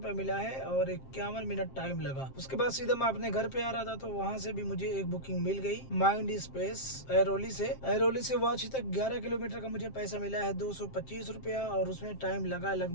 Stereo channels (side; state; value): right; late; 7.6 ms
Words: मिला है और 51 मिनट टाइम लगा। उसके बाद सीधा मैं अपने घर पे आ रहा था, तो वहाँ से भी मुझे एक बुकिंग मिल गई माइंड स्पेस ऐरोली से वाची तक 11 किलोमीटर का मुझे पैसा मिला है 225 रुपया और उसमें टाइम लगा